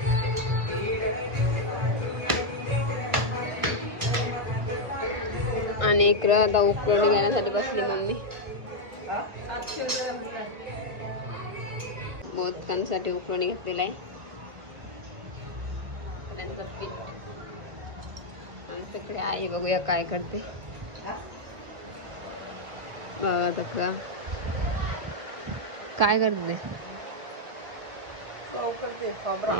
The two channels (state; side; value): late; left; 1.2 ms